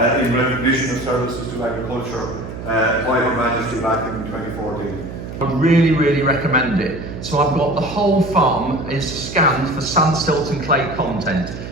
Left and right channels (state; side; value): noise; right; hum, 10 dB below the sound